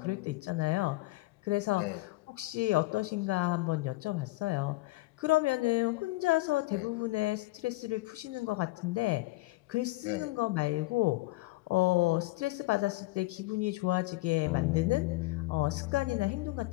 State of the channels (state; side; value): quieter; right; 20.5 dB